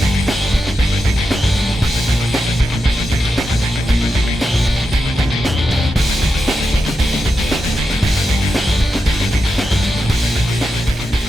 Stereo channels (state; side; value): normal; both; correlation 0.88